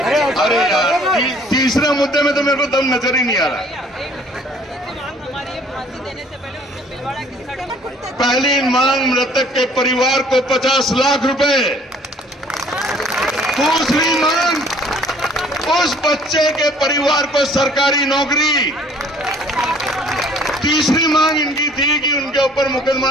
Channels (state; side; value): normal; both; correlation 0.55